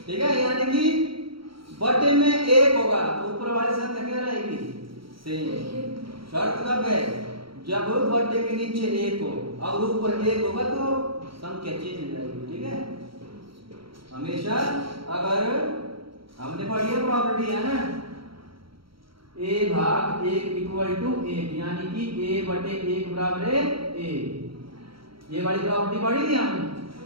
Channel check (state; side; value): late; left; 0.74 ms